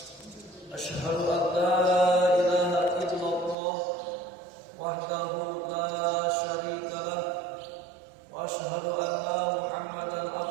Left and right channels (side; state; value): left; drops out; at 3.6 s